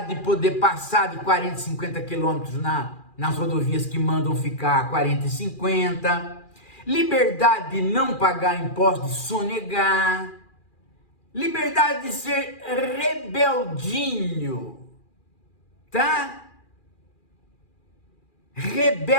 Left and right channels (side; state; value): right; late; 2.4 ms